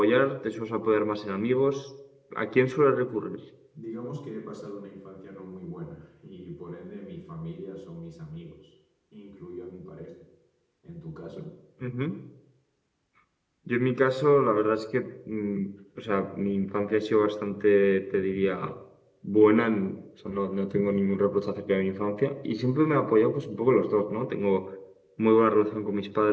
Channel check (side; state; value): both; identical; correlation 1.00